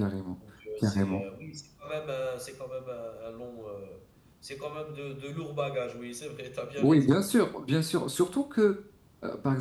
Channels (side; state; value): both; identical; correlation 1.00